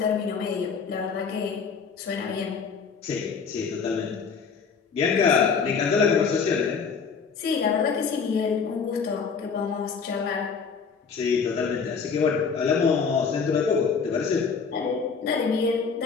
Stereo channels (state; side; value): quieter; right; 5.7 dB